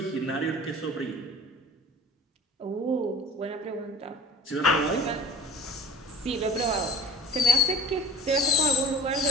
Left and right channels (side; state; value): both; normal; correlation 0.43